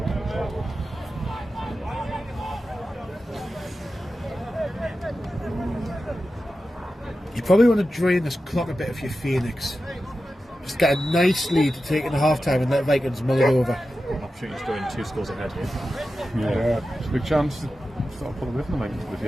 probably want to drain this clock a bit if you're Phoenix. Just get a nice lead to take in the half time and let Vikings mull it over. Opportunity to go in 2 scores ahead here. Yeah, it's a big chance to sort of pull away from the Vikings if you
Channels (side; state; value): both; normal; correlation 0.92